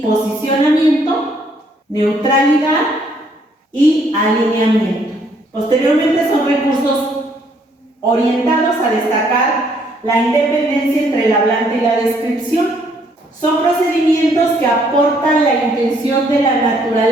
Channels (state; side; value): normal; both; correlation 0.67